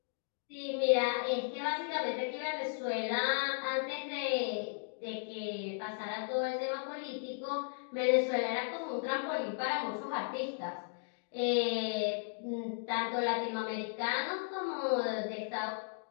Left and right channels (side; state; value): right; silent; digital silence